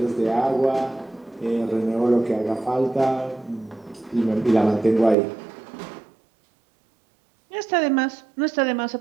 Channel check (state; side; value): drops out; left; at 5.2 s